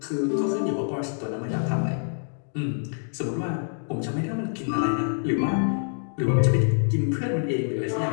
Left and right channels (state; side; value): silent; right; digital silence